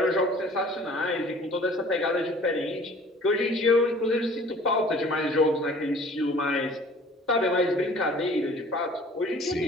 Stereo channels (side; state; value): both; normal; correlation 0.50